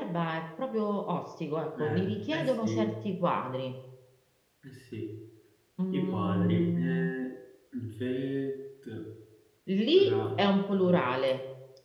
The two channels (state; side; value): identical; both; correlation 1.00